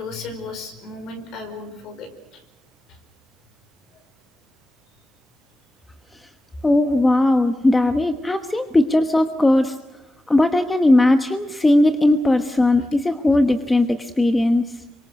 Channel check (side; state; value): both; normal; correlation 0.93